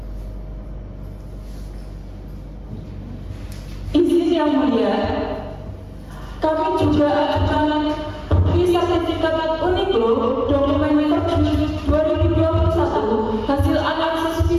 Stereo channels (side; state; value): both; identical; correlation 1.00